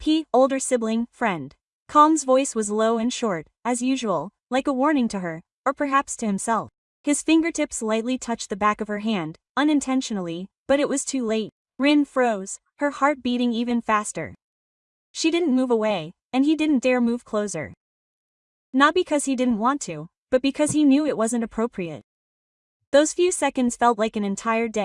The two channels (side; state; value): both; identical; correlation 1.00